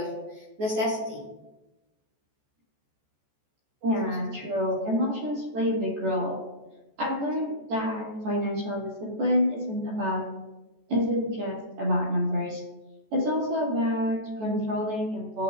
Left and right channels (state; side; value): late; left; 14 ms